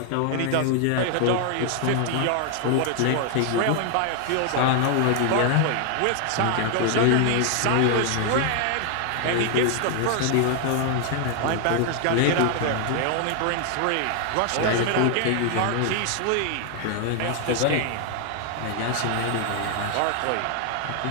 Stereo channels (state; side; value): different; both; correlation 0.00